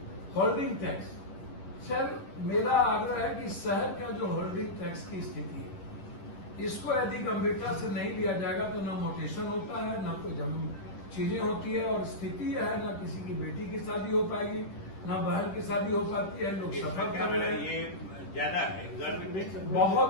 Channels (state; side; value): late; right; 10 ms